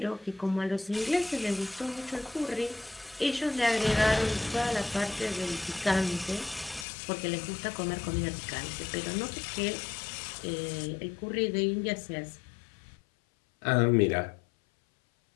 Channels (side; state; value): right; drops out; at 6.9 s